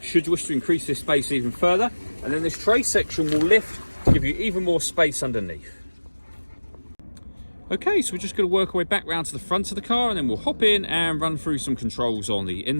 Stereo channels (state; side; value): inverted; both; correlation -1.00